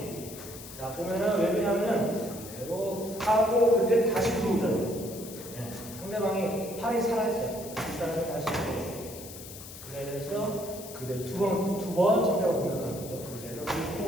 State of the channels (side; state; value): left; noise; hiss, 14 dB below the sound